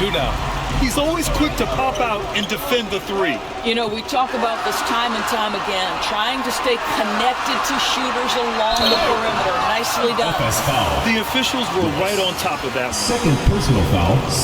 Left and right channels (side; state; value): both; identical; correlation 1.00